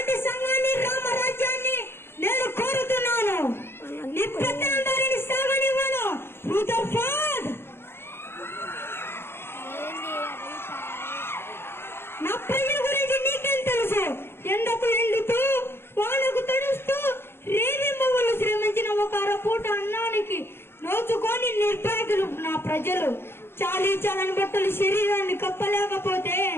సంఘాన్ని, రామరాజ్యాన్ని నేను కోరుతున్నాను. నీ పెత్తనం దానిని సాగనివ్వను. రూదర్ఫోర్డ్, నా ప్రజల గురించి నీకేం తెలుసు? ఎండకు ఎండుతూ వానకు తడుస్తూ రేవి మొవ్వలు శ్రమించిన ఒక అరపూట అన్నానికి నోచుకొని నిర్భాగ్యులు నా ప్రజలు. చాలీ చాలని బట్టలు శరీరాన్ని కప్పలేకపోతే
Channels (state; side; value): late; right; 0.11 ms